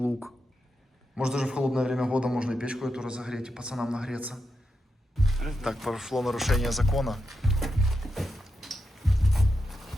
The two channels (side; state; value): both; normal; correlation 0.86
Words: Может, даже в холодное время года можно и печку эту разогреть, и пацанам нагреться. Так, прошло нарушение закона.